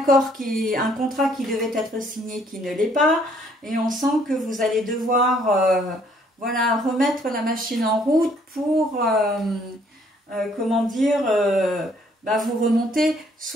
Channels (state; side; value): normal; both; correlation 0.64